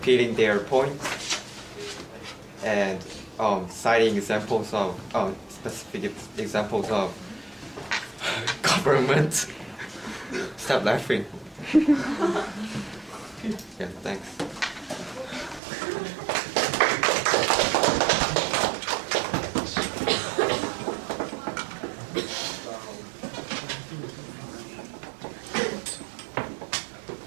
their points and citing examples of specific examples of government. Stop laughing. Yeah, thanks.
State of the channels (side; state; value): left; drops out; at 15.6 s